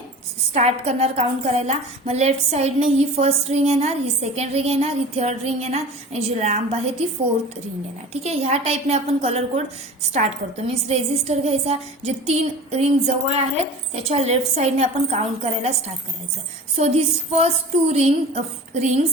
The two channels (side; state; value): both; normal; correlation 0.38